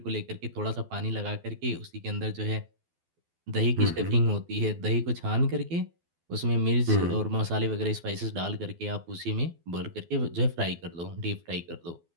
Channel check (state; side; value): late; left; 12 ms